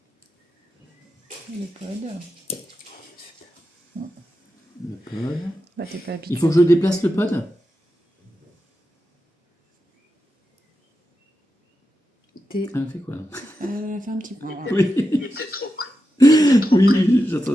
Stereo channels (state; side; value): normal; both; correlation 0.89